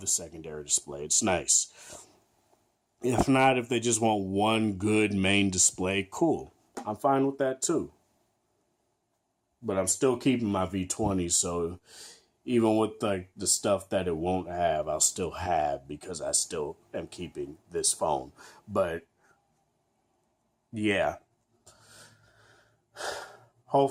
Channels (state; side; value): identical; both; correlation 1.00